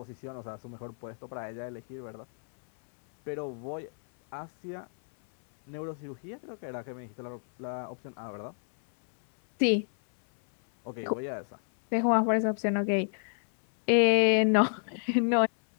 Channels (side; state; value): right; silent; 58 dB below the other